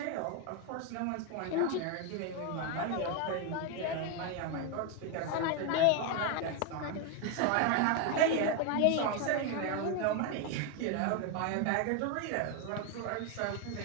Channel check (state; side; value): different; both; correlation 0.01